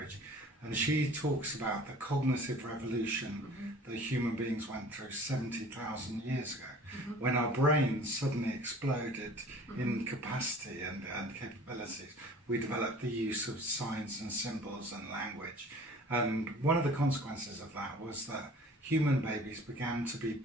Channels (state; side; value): normal; both; correlation 0.47